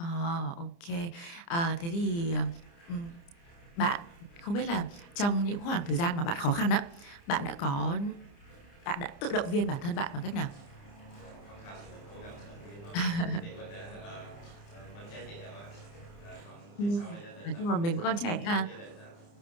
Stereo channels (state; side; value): late; right; 30 ms